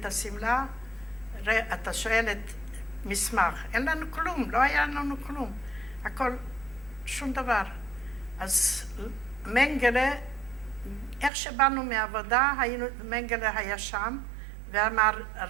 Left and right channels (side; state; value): left; drops out; at 11.3 s